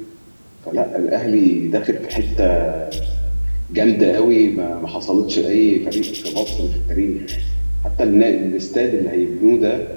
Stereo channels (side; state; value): both; inverted; correlation -1.00